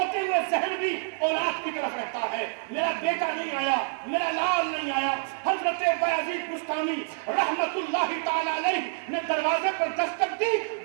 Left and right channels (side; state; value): left; silent; digital silence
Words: ہوئے ذہن بھی اولاد کی طرف رہتا ہے, میرا بیٹا نہیں آیا, میرا لال نہیں آیا. حضرت بایزید بستامی رحمت اللہ تعالی علیہ نے دروازے پر دستک دی.